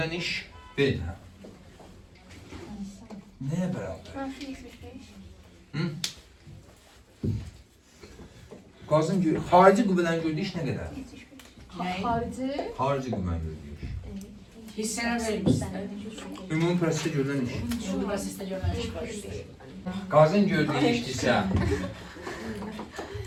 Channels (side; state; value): both; identical; correlation 1.00